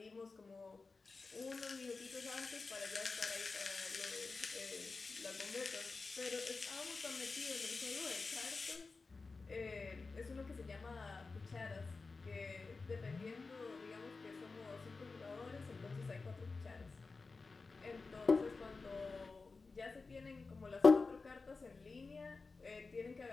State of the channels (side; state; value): right; quieter; 4.1 dB